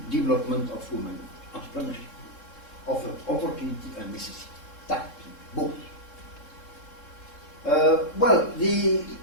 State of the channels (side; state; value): right; late; 3.7 ms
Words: development of women entrepreneurship, of opportunity and necessity. That, both. Well,